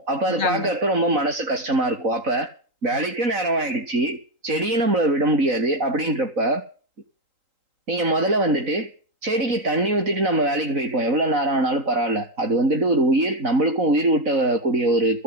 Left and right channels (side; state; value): left; late; 3.8 ms